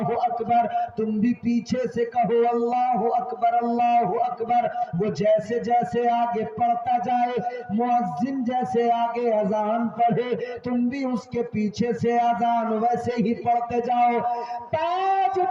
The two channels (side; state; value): both; identical; correlation 1.00